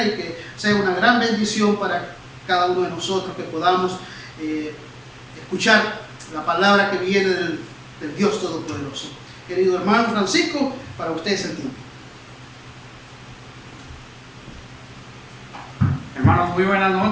y que sea una gran bendición para cada uno de nosotros, que podamos escuchar la palabra que viene del Dios Todopoderoso. Querido hermano Francisco, para usted es el tiempo. Hermanos, muy buenas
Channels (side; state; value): both; identical; correlation 1.00